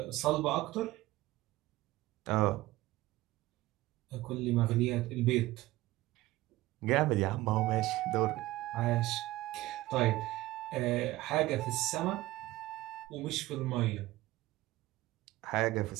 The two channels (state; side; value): quieter; left; 17.8 dB